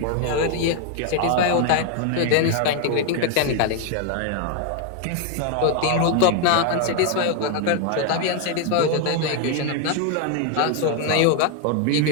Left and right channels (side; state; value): both; different; correlation 0.01